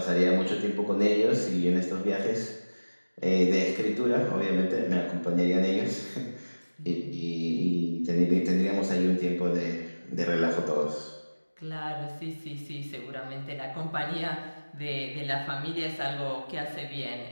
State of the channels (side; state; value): both; inverted; correlation -1.00